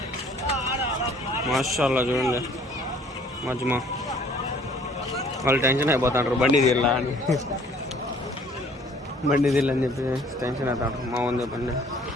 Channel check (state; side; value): normal; both; correlation 0.56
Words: మాషాల్లా చూడండి మజ్మా. వాళ్ళు టెన్షన్ అయిపోతాంటారు బండి తీరలా అని, బండి తీరని చెప్పి టెన్షన్ అవుతాంటారు. మావన్ బండి